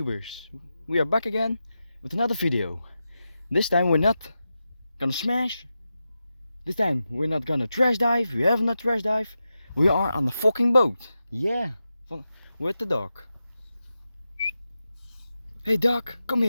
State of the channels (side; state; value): both; inverted; correlation -0.90